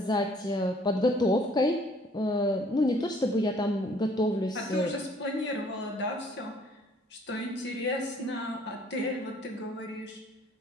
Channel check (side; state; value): both; normal; correlation 0.59